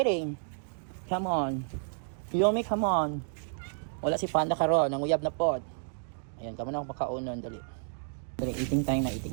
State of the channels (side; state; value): left; silent; digital silence